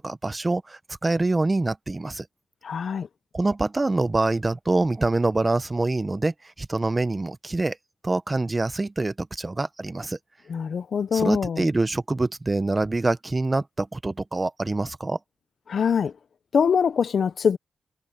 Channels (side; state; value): both; normal; correlation 0.91